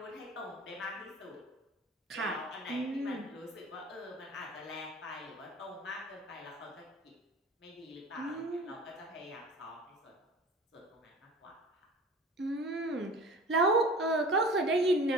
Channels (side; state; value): both; normal; correlation 0.41